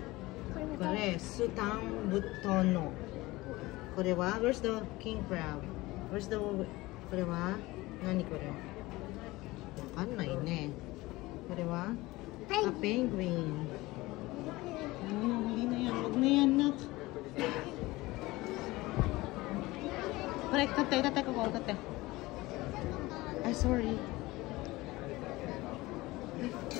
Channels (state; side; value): quieter; right; 20.1 dB